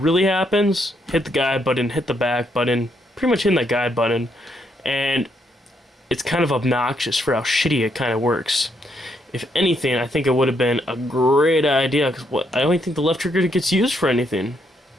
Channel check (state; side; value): normal; both; correlation 0.75